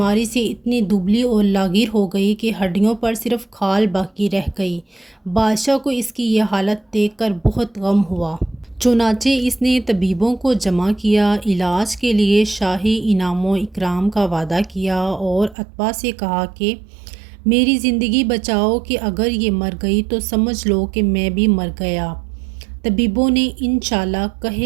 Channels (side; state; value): left; drops out; at 15.6 s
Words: سے اتنی دبلی اور لاغر ہو گئی کہ ہڈیوں پر صرف کھال باقی رہ گئی۔ بادشاہ کو اس کی یہ حالت دیکھ کر بہت غم ہوا۔ چنانچہ اس نے طبیبوں کو جمع کیا، علاج کے لیے شاہی انعام و اکرام کا وعدہ کیا اور اتباع سے کہا کہ میری زندگی بچاؤ کہ اگر یہ مر گئی تو سمجھ لو کہ میں بھی مر گیا۔ طبیبوں نے انشاءاللہ